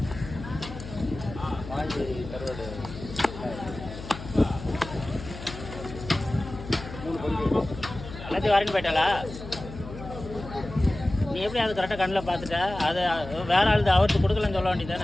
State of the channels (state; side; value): noise; left; hum, 11 dB below the sound